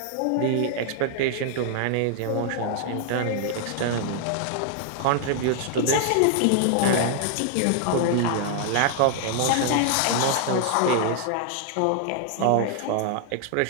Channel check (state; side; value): different; both; correlation -0.01